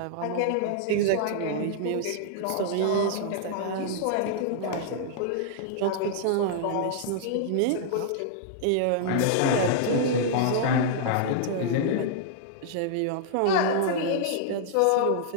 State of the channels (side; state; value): both; different; correlation -0.01